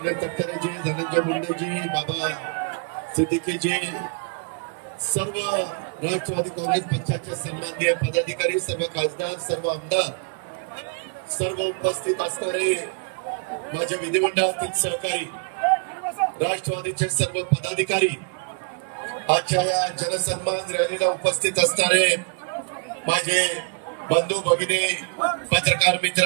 तटकरेजी, धनंजय मुंडेजी, बाबा सिद्दीकीजी, सर्व राष्ट्रवादी काँग्रेस पक्षाचे सन्माननीय पदाधिकारी, सर्व खासदार, सर्व आमदार, सर्व उपस्थित असणारे माझे विधिमंडळातील सहकारी, राष्ट्रवादीचे सर्व पदाधिकारी, आजच्या या जनसन्मान रॅलीला उपस्थित असणारे माझे बंधू भगिनी, पत्रकार मित्र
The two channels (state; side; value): quieter; left; 36.8 dB